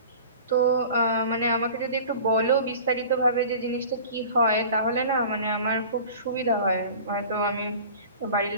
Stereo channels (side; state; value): both; inverted; correlation -0.41